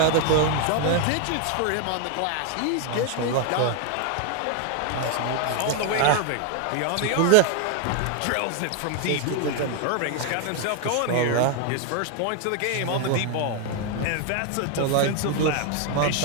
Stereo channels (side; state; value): both; different; correlation 0.01